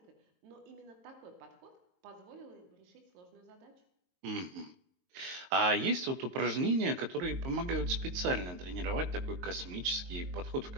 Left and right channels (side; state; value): left; late; 22 ms